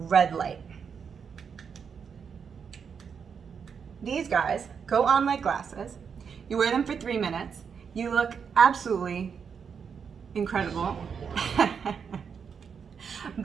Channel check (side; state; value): left; quieter; 6.6 dB